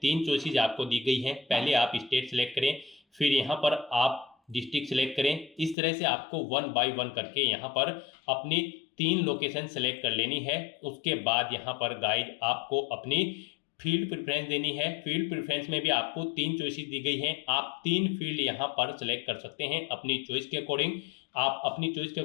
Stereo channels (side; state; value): right; drops out; at 5.8 s